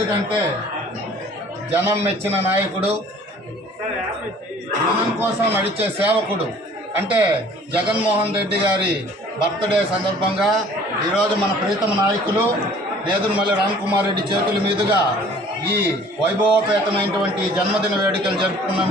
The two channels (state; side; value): normal; both; correlation 0.52